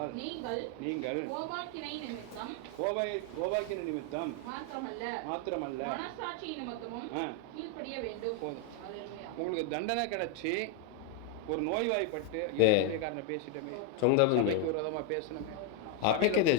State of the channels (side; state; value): both; different; correlation 0.01